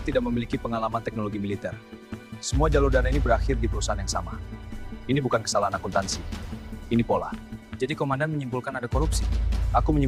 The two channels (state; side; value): identical; both; correlation 1.00